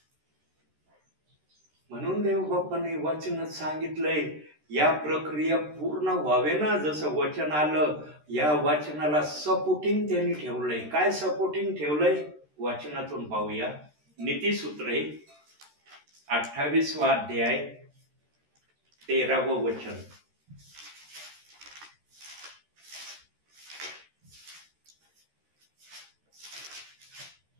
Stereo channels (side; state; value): left; late; 13 ms